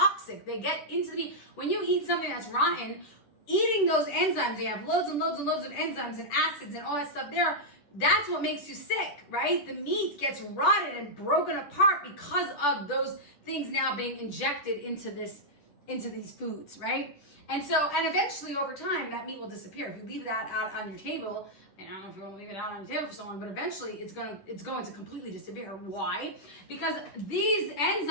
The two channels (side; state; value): right; late; 10 ms